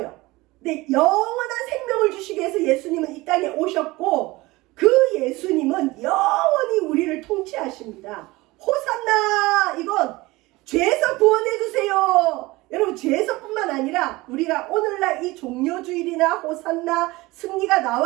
근데 영원한 생명을 주시기 위해서 예수님은 이 땅에 오셨고 그 예수님은 영원히 우리를 통치하십니다. 호산나! 이건 죄에서 구원해 주세요. 여러분 죄에서뿐만 아니라 우리가 오늘날 이 종료주일이나 호산나 승리가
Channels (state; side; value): quieter; left; 20.9 dB